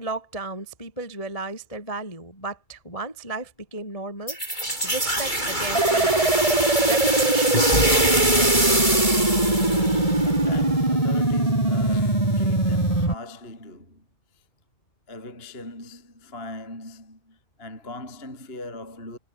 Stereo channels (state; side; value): late; right; 2.3 ms